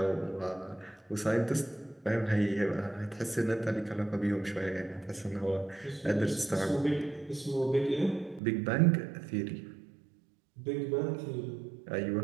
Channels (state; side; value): drops out; left; at 8.4 s